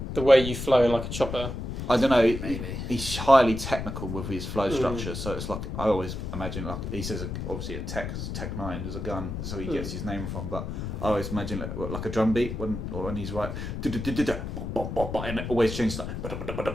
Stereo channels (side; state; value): left; noise; rumble, 5 dB below the sound